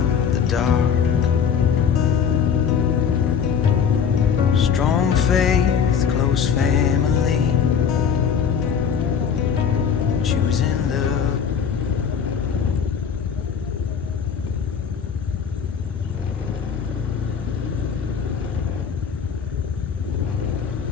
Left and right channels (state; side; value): quieter; right; 7.1 dB